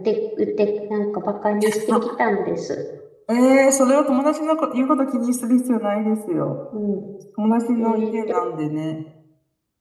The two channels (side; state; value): both; identical; correlation 1.00